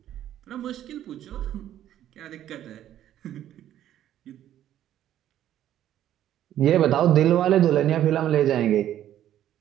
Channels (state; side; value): quieter; left; 11.7 dB